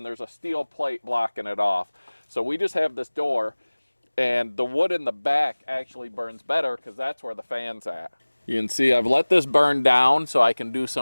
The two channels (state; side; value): inverted; both; correlation -1.00